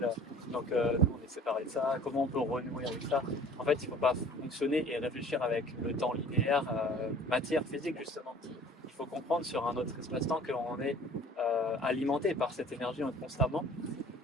Donc, nous, on est séparés de ça. Comment on peut renouer avec ça? En fait, il ne faut pas fonctionner et réfléchir avec le temps linéaire, matière, physique, justement. Il faut comprendre sur un autre espace-temps qu'on est alimenté par cette énergie constamment.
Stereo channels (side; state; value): both; normal; correlation 0.48